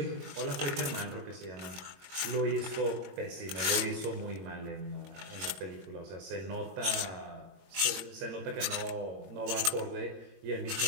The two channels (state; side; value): late; left; 22 ms